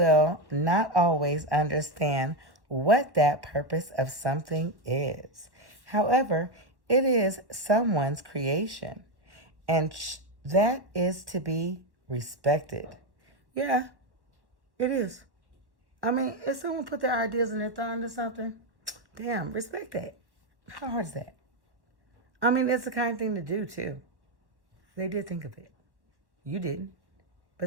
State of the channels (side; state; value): left; late; 1.1 ms